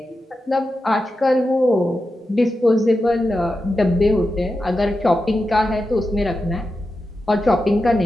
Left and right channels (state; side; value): normal; both; correlation 0.90